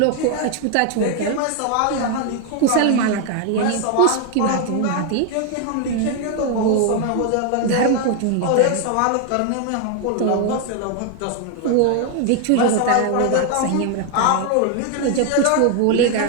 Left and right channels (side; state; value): both; different; correlation 0.01